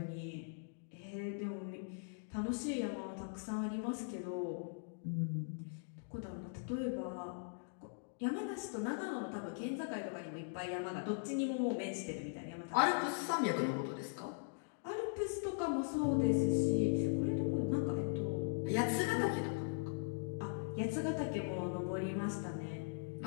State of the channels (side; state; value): right; silent; digital silence